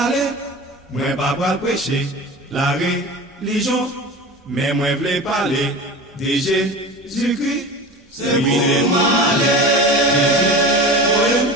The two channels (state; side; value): normal; both; correlation 0.32